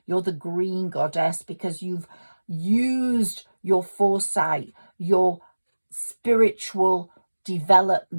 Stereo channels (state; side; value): inverted; both; correlation -1.00